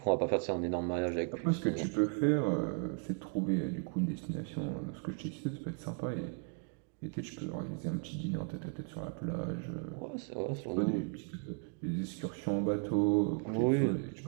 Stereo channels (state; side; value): quieter; left; 38.2 dB